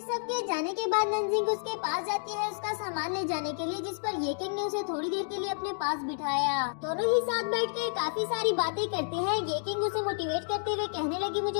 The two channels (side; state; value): right; silent; digital silence